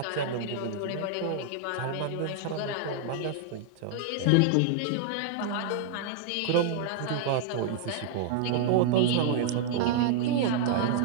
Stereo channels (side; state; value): both; different; correlation 0.00